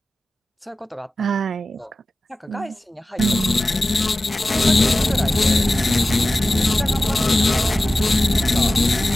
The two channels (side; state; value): both; normal; correlation 0.95